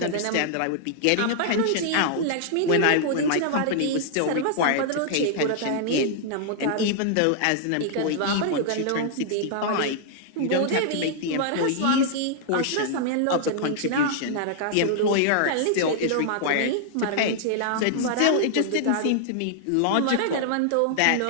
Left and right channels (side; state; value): both; different; correlation -0.01